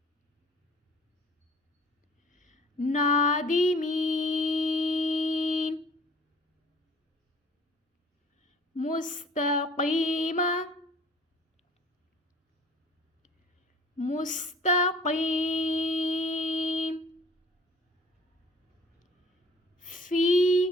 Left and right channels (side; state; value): both; normal; correlation 0.51